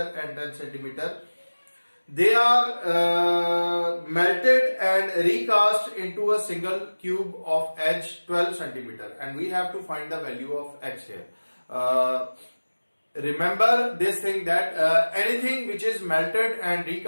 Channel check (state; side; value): inverted; both; correlation -1.00